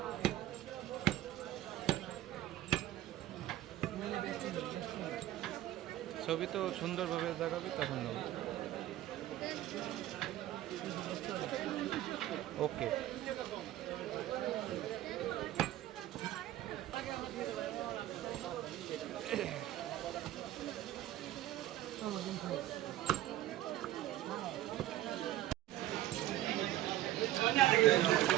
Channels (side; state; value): left; quieter; 14.3 dB